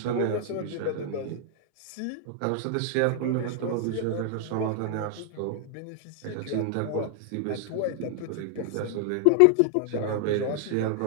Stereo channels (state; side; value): different; both; correlation 0.00